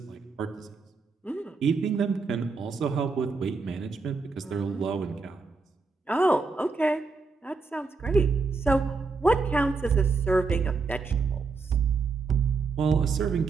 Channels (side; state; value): left; quieter; 4.3 dB